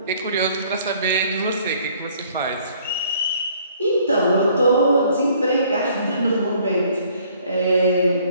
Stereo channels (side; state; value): both; inverted; correlation -0.60